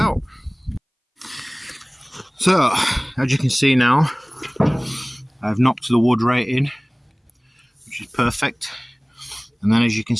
So as you can see now, I've knocked the wood right in, which is perfect. And then as you can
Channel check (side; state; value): both; identical; correlation 1.00